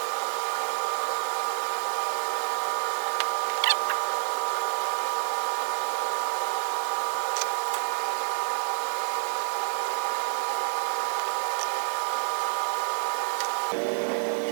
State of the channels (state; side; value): silent; left; digital silence